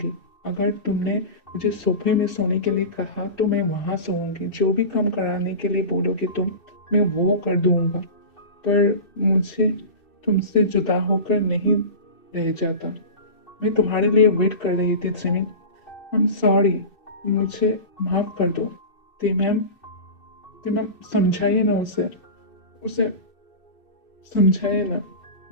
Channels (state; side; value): late; right; 2.6 ms